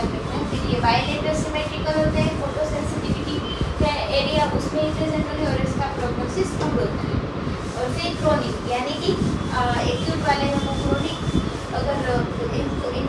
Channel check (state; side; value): identical; both; correlation 1.00